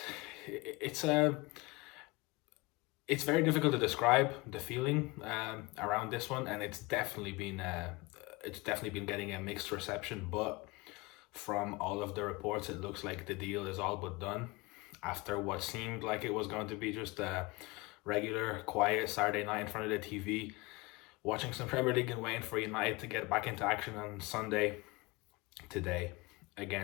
it's a it's very difficult to describe the feeling around this one, and it's definitely been getting a mixed reception. But from all of the reports, it looks like the deal is all but done after what seemed like it was going to be just a regular, quiet Saturday night in front of the TV, watching some Premier League and waiting for United to get back into action on Sunday today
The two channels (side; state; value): right; quieter; 23.7 dB